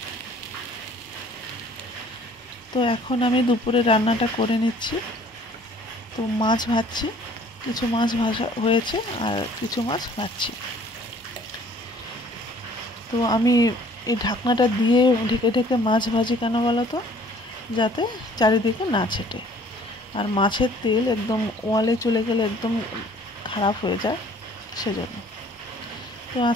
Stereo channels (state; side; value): normal; both; correlation 0.55